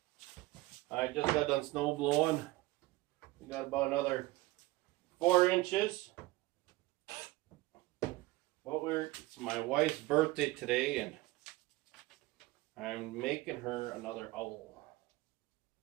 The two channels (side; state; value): left; quieter; 19.5 dB